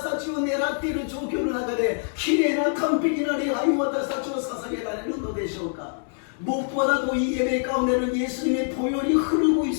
たちを狙っている状況の中で、きれいな完璧な礼拝を私たちは捧げられるのでしょうか。 무엇보다도 이 예배 가운데는 예수님의 보혈이 흐르고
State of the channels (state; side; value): silent; right; digital silence